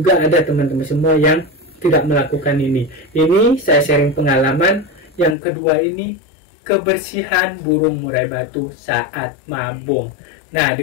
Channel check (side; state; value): right; drops out; at 5.4 s